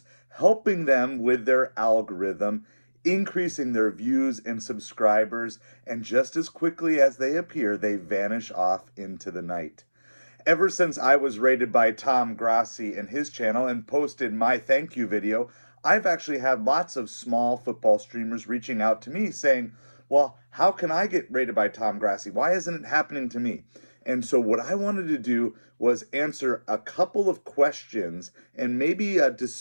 helping them with their algorithm, increasing their views and subscribers, and just as quickly as they appear, they vanish off into the night. Ever since I was rated by Tom Grossi in his channel and posted my thank you video, I've actually had lots of small football streamers reaching out to me saying, well, how can I get rated by Tom Grossi? Why isn't it happening to me? And so what I wanted to do was answer a couple of questions and maybe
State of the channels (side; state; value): both; inverted; correlation -1.00